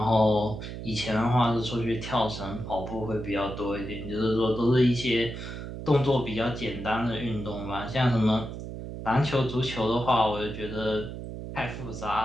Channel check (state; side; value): noise; right; hum, 8 dB below the sound